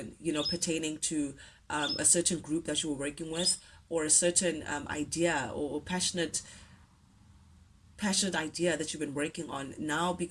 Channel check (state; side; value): identical; both; correlation 1.00